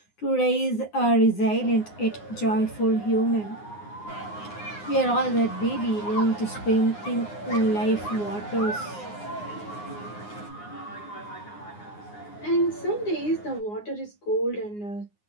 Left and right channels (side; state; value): right; late; 9.7 ms